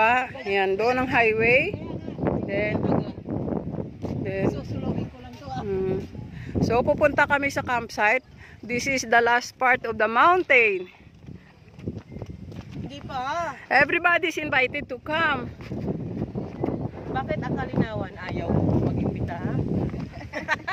Yan. Doon ang highway. Then susulogin ko lang to, ah. So, pupunta kami sa campsite. This is the last part of the mountain. Hindi pa. Everybody's invited to come. Bakit ang kalinawan ayaw mag-imbita, ha?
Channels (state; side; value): identical; both; correlation 1.00